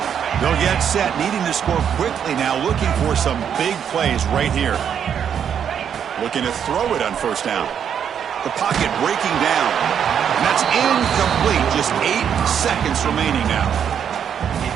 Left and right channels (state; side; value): quieter; left; 8.3 dB